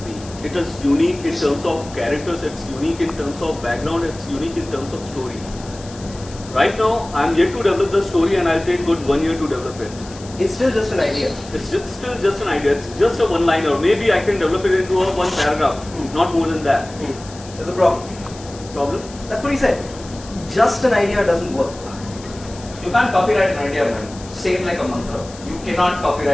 me. It is unique in terms of characters, it's unique in terms of background, it's unique in terms of story. Right now, I'm yet to develop the story and I'll take good 1 year to develop it. It's still just an idea. It's still just an idea, it's just a one-liner. Maybe I can develop it into a one paragraph, not more than that. There's a problem. Problem? That's what he said. Just an idea doesn't work. You can't copyright an idea, man. Say it like a mantra. You cannot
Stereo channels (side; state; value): left; noise; hiss, 18 dB below the sound